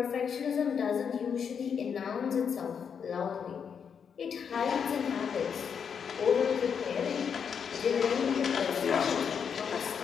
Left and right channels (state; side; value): quieter; right; 7.0 dB